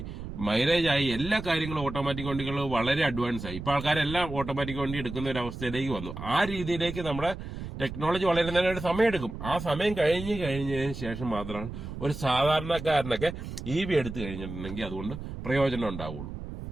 മൈലേജ് ആയി, എല്ലാ കാര്യങ്ങളും ഓട്ടോമാറ്റിക് വണ്ടികൾ വളരെ അഡ്വാൻസ് ആയി. ഇപ്പൊ ആൾക്കാരെല്ലാം ഓട്ടോമാറ്റിക് വണ്ടി എടുക്കുന്ന ഒരു അവസ്ഥയിലേക്ക് വന്നു. ആ രീതിയിലേക്ക് നമ്മുടെ ടെക്നോളജി വളരുന്നതിന് ഒരു സമയമെടുക്കും. ആ സമയം കഴിഞ്ഞതിന് ശേഷം മാത്രമാണ് ഒരു സാധാരണക്കാരനൊക്കെ EV എടുത്തു കഴിഞ്ഞിട്ടുണ്ടെങ്കിൽ അതുകൊണ്ട് പ്രയോജനം ഉണ്ടാവുള്ളൂ.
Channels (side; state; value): right; noise; rumble, 9 dB below the sound